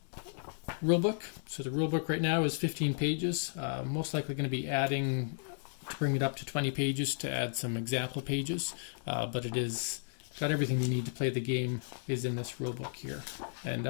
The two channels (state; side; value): silent; right; digital silence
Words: rulebook. So the rulebook right now is 15 pages. Most likely going to be adding to bring it up to 20 pages to add some example pages, but it is got everything you need to play the game is in this rulebook here. And